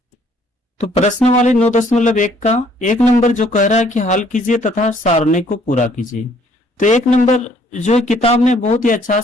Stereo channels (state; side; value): normal; both; correlation 0.63